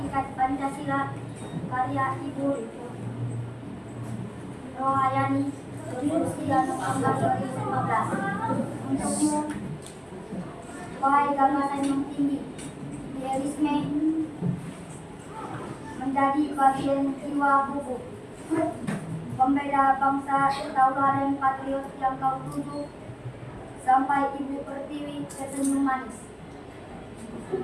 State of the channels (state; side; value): identical; both; correlation 1.00